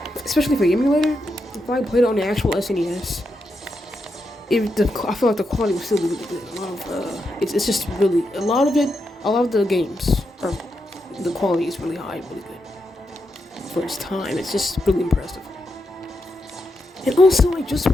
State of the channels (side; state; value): both; normal; correlation 0.84